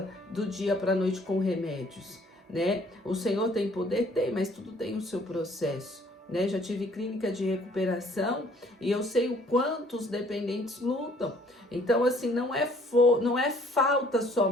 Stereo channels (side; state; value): both; normal; correlation 0.59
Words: do dia para a noite com remédios, né? O Senhor tem poder? Tem, mas tudo tem o seu processo, né? Já tive clínica de recuperação e eu sei o quanto os dependentes lutam. Então, assim, não é falta